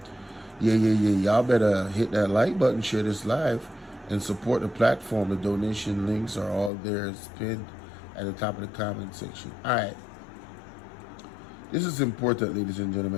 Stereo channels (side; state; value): right; drops out; at 6.7 s